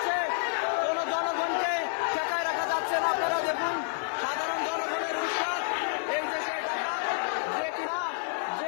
কোনো জনগণকে ঠেকায় রাখা যাচ্ছে না। আপনারা দেখুন সাধারণ জনগণের উৎসাহ, এই দেশে ডাকাত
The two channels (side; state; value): right; silent; digital silence